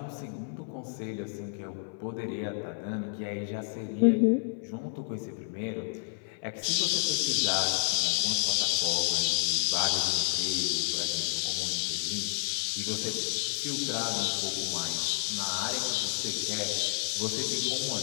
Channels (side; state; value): right; silent; 58 dB below the other